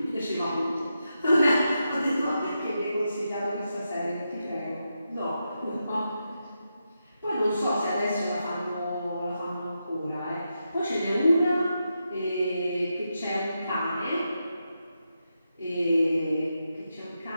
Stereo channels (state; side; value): inverted; both; correlation -0.86